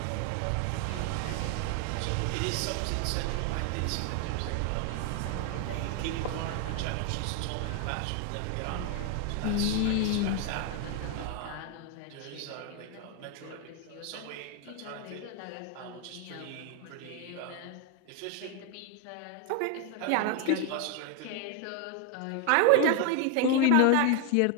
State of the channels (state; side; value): different; both; correlation 0.01